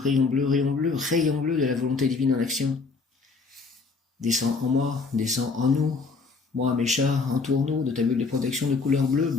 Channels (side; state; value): right; quieter; 4.4 dB